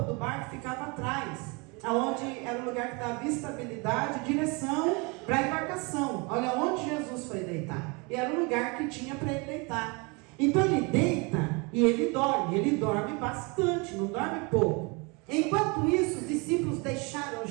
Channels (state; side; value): quieter; left; 29.7 dB